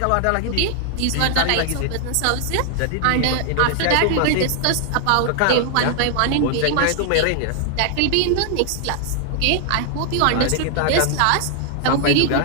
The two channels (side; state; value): both; different; correlation 0.00